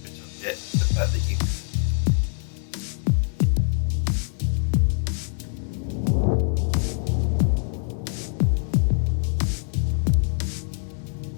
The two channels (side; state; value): right; silent; 60 dB below the other